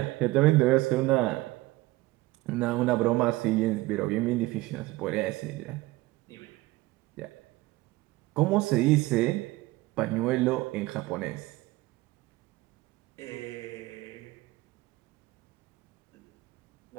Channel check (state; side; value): quieter; left; 19.5 dB